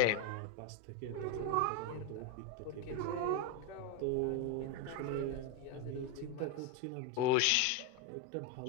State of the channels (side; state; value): both; different; correlation 0.02